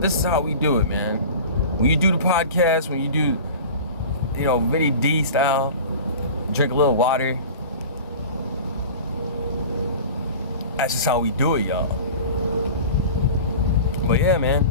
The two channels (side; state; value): both; inverted; correlation -0.37